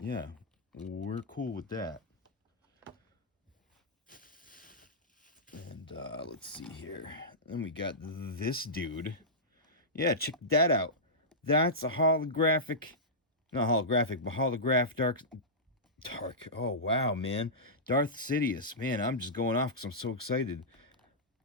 we're cool with that. And let's see here. Then we got this dude. Yeah, check that out. That's a holographic, not holographic, but holograph dark. Oh, wow, man. Darth Sidious. Man, I'm just going off because I'm so excited.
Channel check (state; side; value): normal; both; correlation -0.14